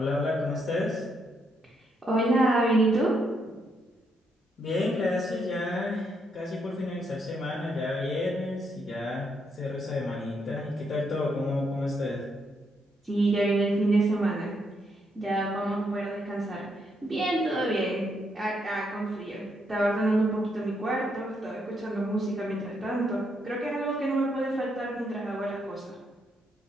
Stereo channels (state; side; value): normal; both; correlation 0.77